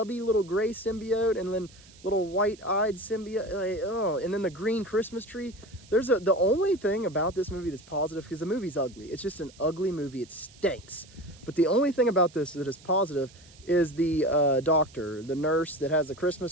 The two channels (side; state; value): right; noise; hiss, 24 dB below the sound